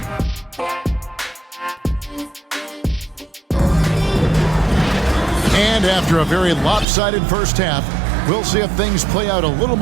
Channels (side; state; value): left; drops out; at 6.9 s